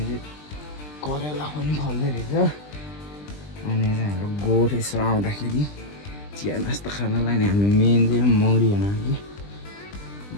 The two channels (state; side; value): late; right; 20 ms